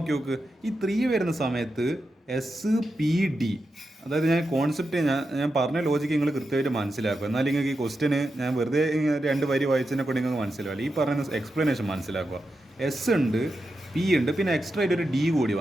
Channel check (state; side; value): normal; both; correlation 0.88